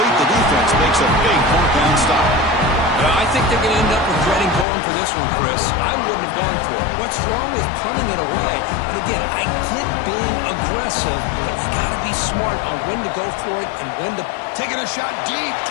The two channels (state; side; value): drops out; right; at 4.7 s